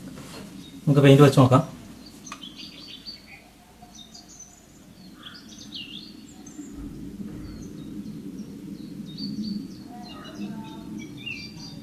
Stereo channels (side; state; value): both; identical; correlation 1.00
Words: നമുക്ക് പെയിൻറ്റ് വെച്ച് നോക്കാം.